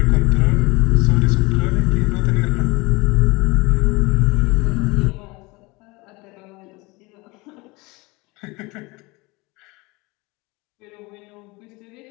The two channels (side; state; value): right; quieter; 24.3 dB